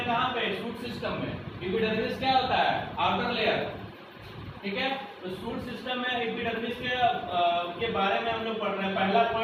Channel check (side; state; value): both; identical; correlation 1.00